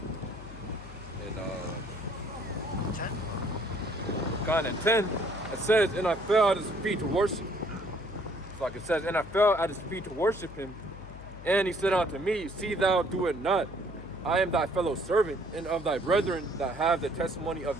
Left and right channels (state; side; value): noise; left; hum, 15 dB below the sound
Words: and 10. kind of 10, it says, and I fell at his feet to worship. Like it says, and I fell at his feet to worship him. And he said unto me, see thou do it not. I am thy fellow servant, and of thy brethren that have the testimony of